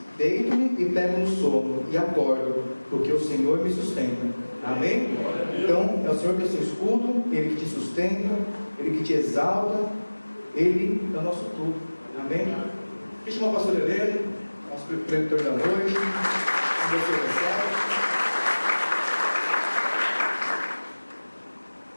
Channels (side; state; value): both; inverted; correlation -1.00